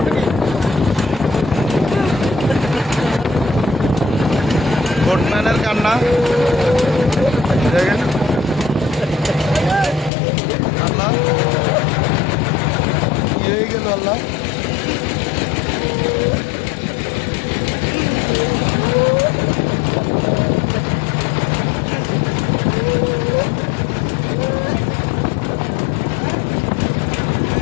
বোটম্যানের কান্না দেখেন, আল্লাহ কি হয়ে গেল আল্লাহ।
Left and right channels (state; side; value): drops out; right; at 10.1 s